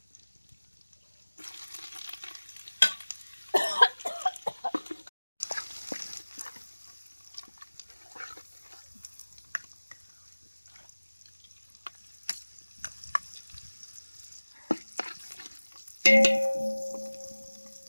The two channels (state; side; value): inverted; both; correlation -1.00